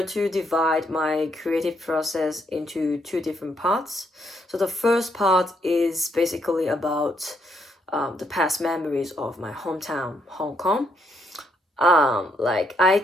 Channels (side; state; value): both; normal; correlation 0.74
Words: to divide my creative process into two different parts. So the first part is basically about the past memories of my hometown, Hong Kong. Like I